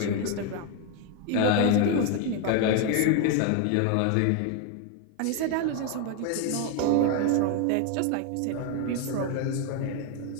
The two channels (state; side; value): different; both; correlation 0.01